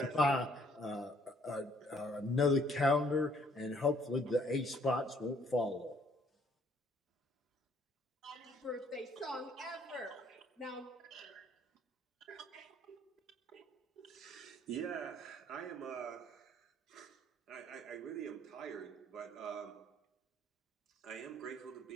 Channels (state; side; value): normal; both; correlation 0.62